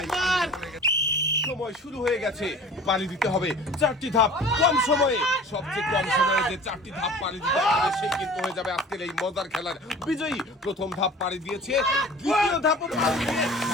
সময় শুরু হয়ে গেছে, পাড়ি দিতে হবে 4টি ধাপ কম সময়ে। সবচেয়ে কম সময়ে যে 4টি ধাপ পাড়ি দিতে পারবে সে কিন্তু হয়ে যাবে আজকের এই মজার খেলার বিজয়ী। প্রথম ধাপ পাড়ি দিয়েছে, দ্বিতীয় ধাপও পাড়ি দিয়ে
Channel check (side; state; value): both; normal; correlation 0.43